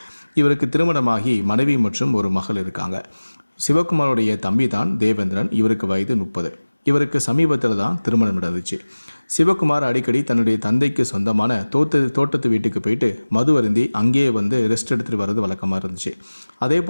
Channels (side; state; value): both; inverted; correlation -1.00